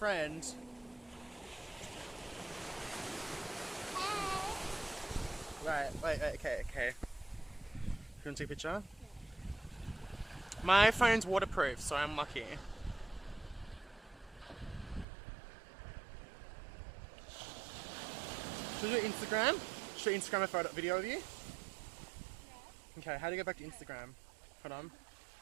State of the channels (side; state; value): left; drops out; at 15.1 s